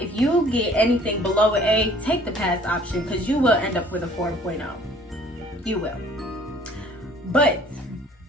you get anything below an A, take the pass option because you will end up with a 4.0. You will. But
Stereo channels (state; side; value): normal; both; correlation 0.54